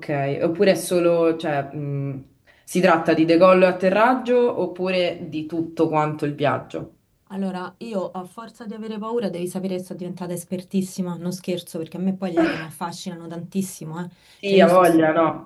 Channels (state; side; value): identical; both; correlation 1.00